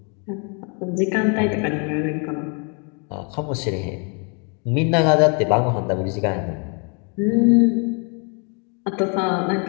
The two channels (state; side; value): quieter; right; 36.4 dB